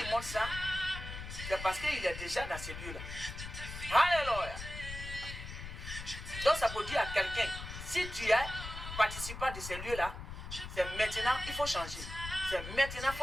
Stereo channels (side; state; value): left; noise; rumble, 9 dB below the sound